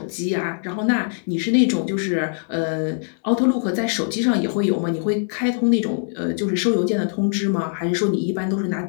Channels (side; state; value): right; silent; 64 dB below the other